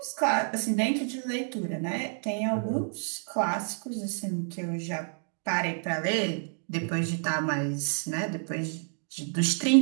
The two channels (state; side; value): silent; left; 58 dB below the other